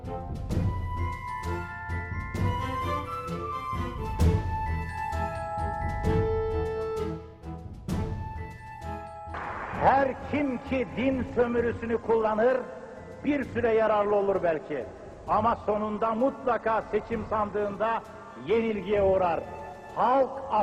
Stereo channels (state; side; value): identical; both; correlation 1.00